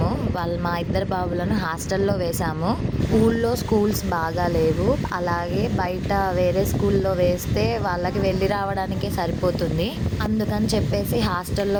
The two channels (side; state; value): both; identical; correlation 1.00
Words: మా ఇద్దరు బాబులను హాస్టల్లో వేసాము. ఊళ్ళో స్కూల్స్ బాగా లేవు, అలాగే బయట వేరే స్కూల్లో వేస్తే వాళ్ళకి వెళ్ళి రావడానికే సరిపోతుంది. అందుకని చెప్పేసి